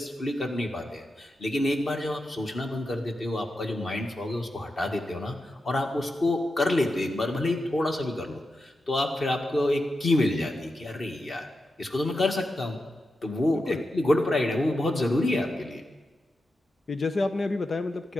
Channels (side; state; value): both; normal; correlation 0.89